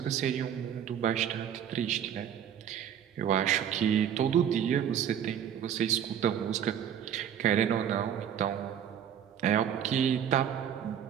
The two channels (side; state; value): left; quieter; 9.3 dB